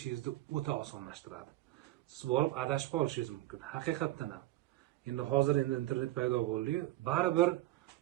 o'ta osonlashtiradi. Siz borib adashib qolishingiz mumkin. Haqiqatdan ham. Hozir internet paydo bo'ldi-yu, baribir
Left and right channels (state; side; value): quieter; left; 16.6 dB